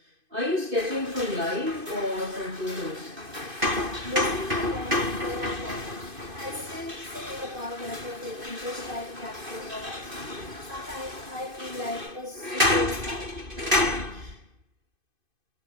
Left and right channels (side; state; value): left; late; 2.5 ms